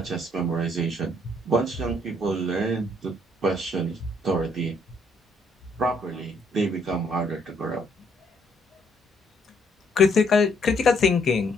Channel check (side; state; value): both; normal; correlation 0.68